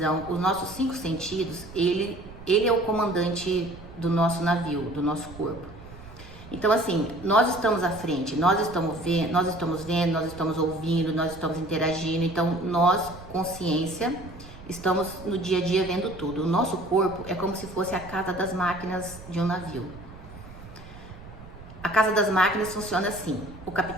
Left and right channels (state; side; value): noise; right; rumble, 17 dB below the sound